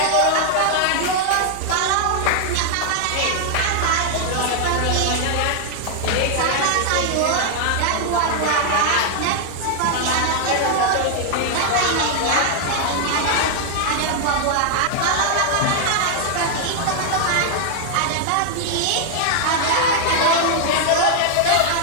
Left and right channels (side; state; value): both; different; correlation 0.00